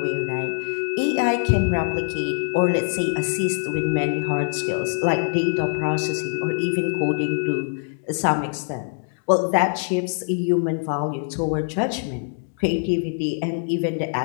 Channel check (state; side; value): silent; right; digital silence